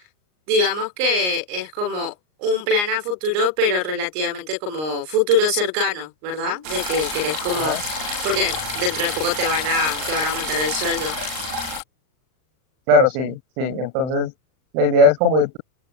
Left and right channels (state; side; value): late; left; 39 ms